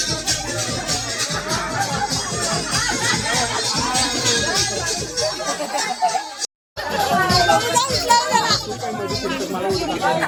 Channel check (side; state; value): both; identical; correlation 1.00